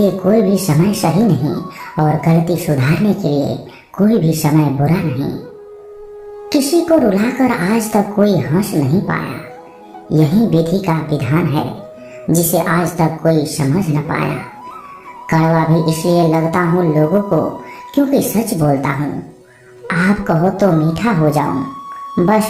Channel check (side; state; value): both; identical; correlation 1.00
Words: कोई भी समय सही नहीं, और गलती सुधारने के लिए कोई भी समय बुरा नहीं। किसी को रुलाकर आज तक कोई हंस नहीं पाया, यही विधि का विधान है जिसे आज तक कोई समझ न पाया। कड़वा भी इसलिए लगता हूँ लोगों को क्योंकि सच बोलता हूँ। आप कहो तो मीठा हो जाऊं, बस